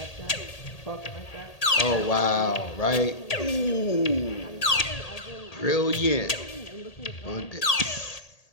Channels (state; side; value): late; right; 1.8 ms